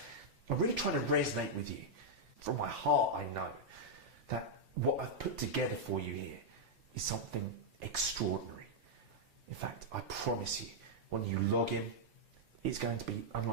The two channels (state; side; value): normal; both; correlation -0.05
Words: I'm really trying to resonate with you. From my heart, I know that what I've put together for you here is something extraordinary. In fact, I promise you, when you log in, it's going to be